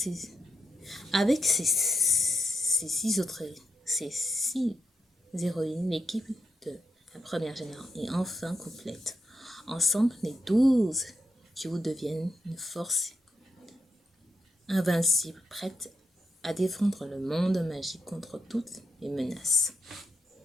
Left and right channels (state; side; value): normal; both; correlation 0.82